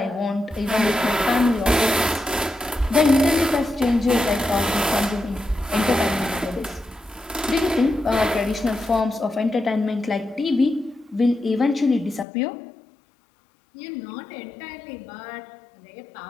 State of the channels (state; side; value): drops out; right; at 12.2 s